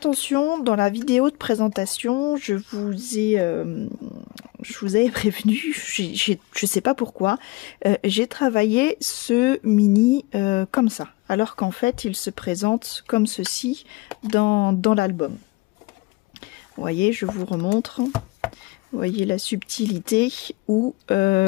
dans la vidéo de présentation, je vous avais prévenu, je sais pas pourquoi, j'ai travaillé ce mini comme ça. Alors qu'en fait, il se présente comme ceci dans l'album. Vous voyez, je vous remontre. Vous voyez la subtilité où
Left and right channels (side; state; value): right; quieter; 22.8 dB